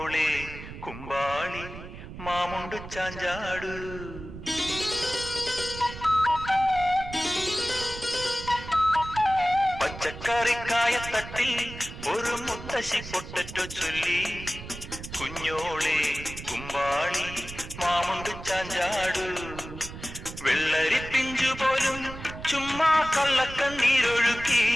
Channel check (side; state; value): right; noise; rumble, 12 dB below the sound